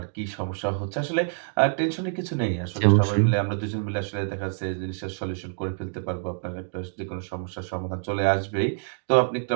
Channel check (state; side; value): silent; left; 61 dB below the other